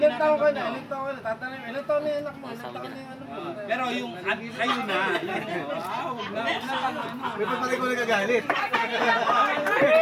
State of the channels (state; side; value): identical; both; correlation 1.00